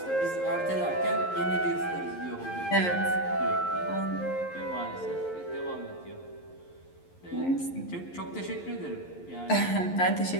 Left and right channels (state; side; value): late; right; 11 ms